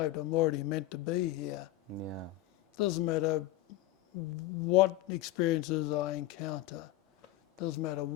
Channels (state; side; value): quieter; right; 15.2 dB